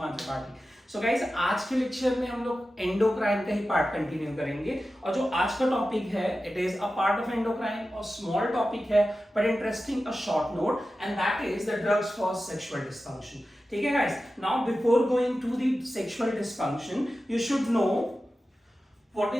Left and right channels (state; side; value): normal; both; correlation 0.93